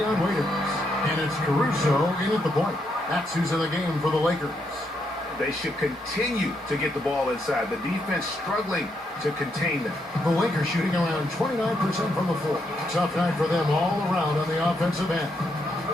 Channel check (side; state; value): both; normal; correlation 0.78